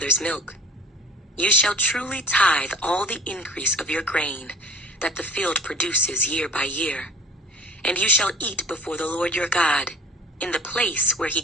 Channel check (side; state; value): both; normal; correlation 0.47